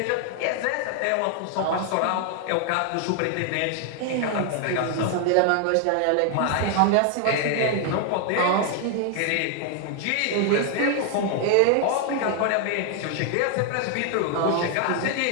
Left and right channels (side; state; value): both; different; correlation 0.00